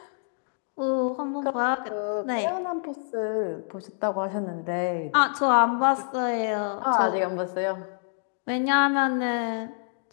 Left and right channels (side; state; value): right; silent; 60 dB below the other